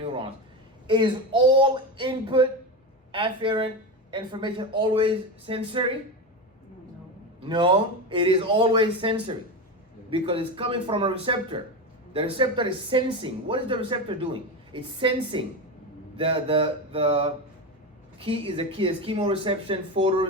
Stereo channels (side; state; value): both; normal; correlation 0.19